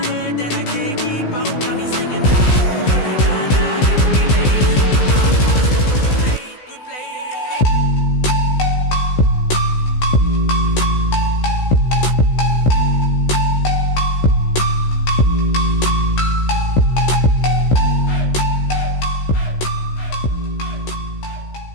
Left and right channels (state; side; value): late; right; 16 ms